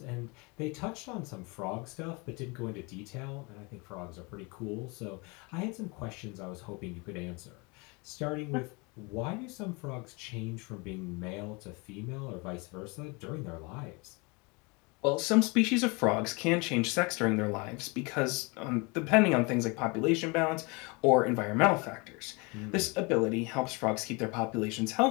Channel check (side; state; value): right; quieter; 28.7 dB